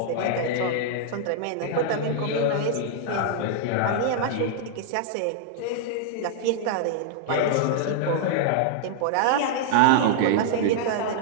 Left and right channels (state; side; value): different; both; correlation -0.01